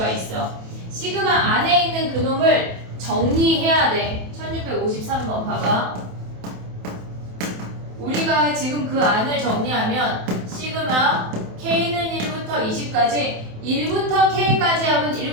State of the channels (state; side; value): late; left; 27 ms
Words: 있어. 시그마 안에 있는 그놈을 정리해야 돼. 1653번 봐봐. 우리가 지금 그 안을 정리하면 시그마 K는 1부터 20까지 1부터 K까지 합은